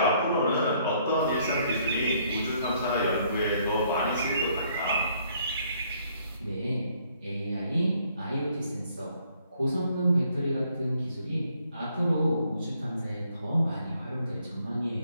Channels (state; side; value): inverted; both; correlation -0.66